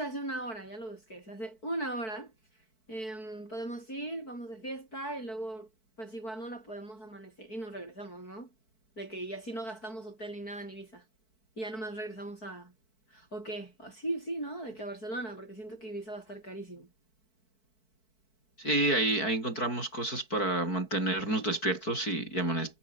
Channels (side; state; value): right; late; 4.6 ms